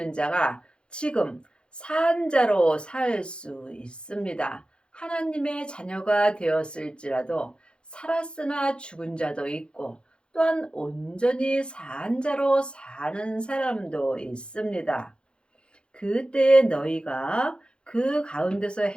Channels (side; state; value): right; late; 0.054 ms